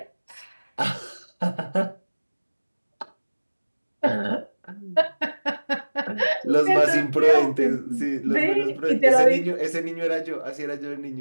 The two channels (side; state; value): both; inverted; correlation -1.00